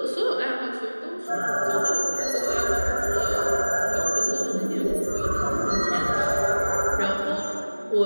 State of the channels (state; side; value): inverted; both; correlation -1.00